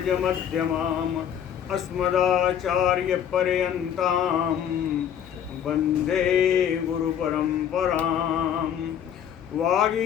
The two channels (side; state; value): right; quieter; 9.2 dB